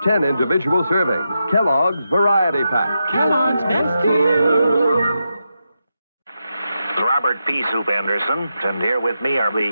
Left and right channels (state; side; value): inverted; both; correlation -0.87